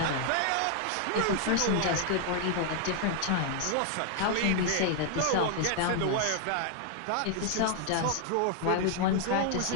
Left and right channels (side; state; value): both; different; correlation 0.00